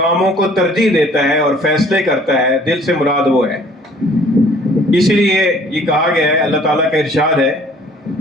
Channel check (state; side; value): normal; both; correlation 0.55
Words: کو ترجیح دیتا ہے اور فیصلے کرتا ہے، دل سے مراد وہ ہے۔ اسی لیے یہ کہا گیا ہے، اللہ تعالیٰ کا ارشاد ہے